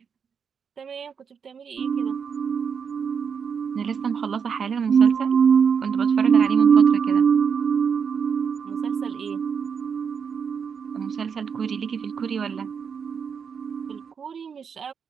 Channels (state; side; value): quieter; left; 6.6 dB